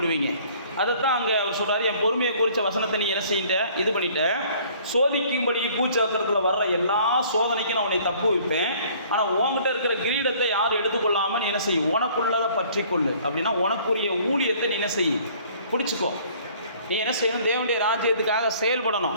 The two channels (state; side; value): inverted; both; correlation -0.55